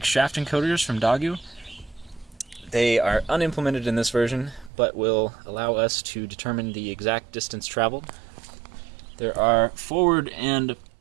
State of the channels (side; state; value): left; drops out; at 4.7 s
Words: shaft encoders from Dagu. They are unimplemented in this version, but will allow us to determine the exact distance traveled. There are forward and